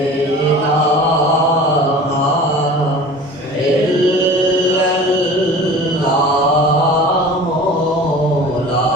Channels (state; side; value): normal; both; correlation 0.40